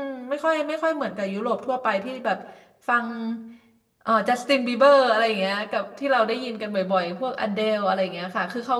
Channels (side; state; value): both; identical; correlation 1.00